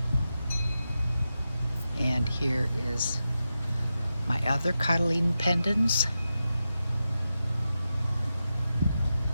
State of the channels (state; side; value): inverted; both; correlation -0.91